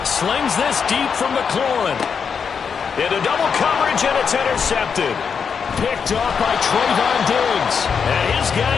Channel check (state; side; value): quieter; right; 6.4 dB